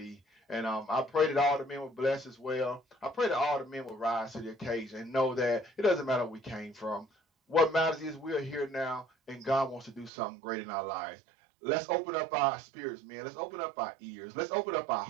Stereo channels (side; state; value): left; drops out; at 10.1 s